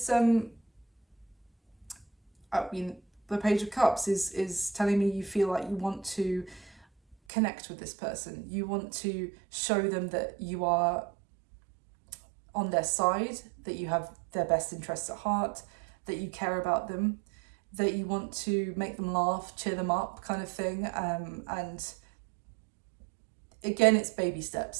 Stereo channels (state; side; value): drops out; left; at 7.2 s